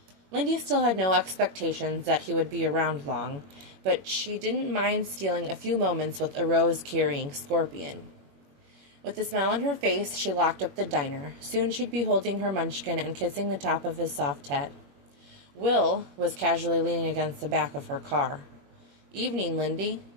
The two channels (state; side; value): late; left; 21 ms